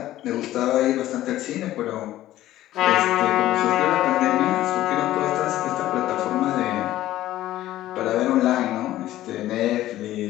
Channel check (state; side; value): quieter; right; 14.5 dB